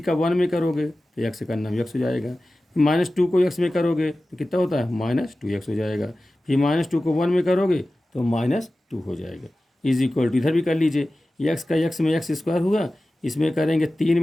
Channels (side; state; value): both; normal; correlation 0.96